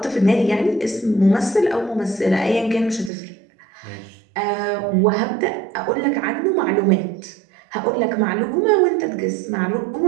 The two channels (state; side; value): drops out; left; at 3.1 s